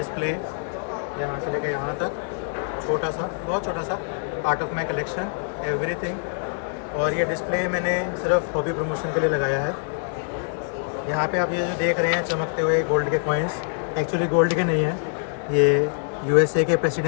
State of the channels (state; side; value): silent; right; digital silence